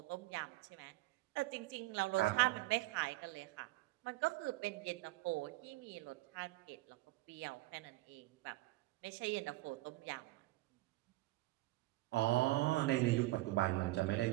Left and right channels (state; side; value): quieter; left; 18.9 dB